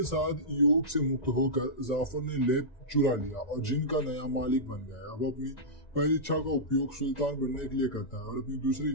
साथ योग से मुक्त होकर जाफर ने लेप चुरा लिया और जिन का नया मालिक बन गया। अब अपनी पहली इच्छा का उपयोग सुल्तान बनने के लिए करता है और अपनी दूसरी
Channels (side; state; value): right; late; 1.9 ms